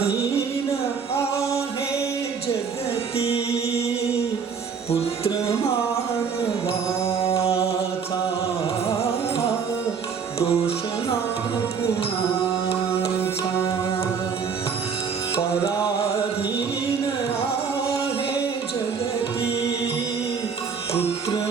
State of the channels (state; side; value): quieter; left; 6.1 dB